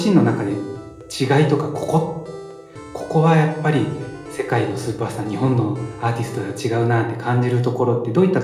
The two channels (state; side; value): identical; both; correlation 1.00